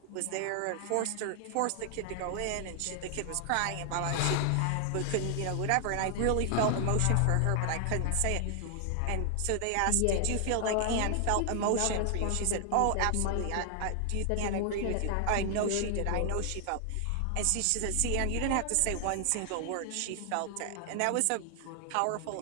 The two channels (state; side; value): different; both; correlation 0.00